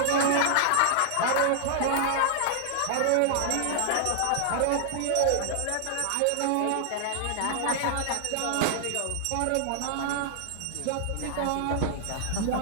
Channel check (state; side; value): different; both; correlation -0.01